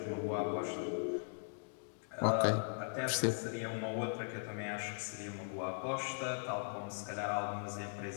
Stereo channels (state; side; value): silent; right; digital silence